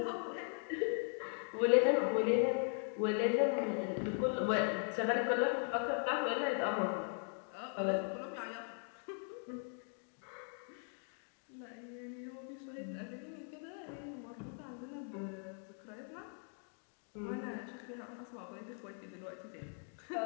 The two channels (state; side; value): silent; right; 51 dB below the other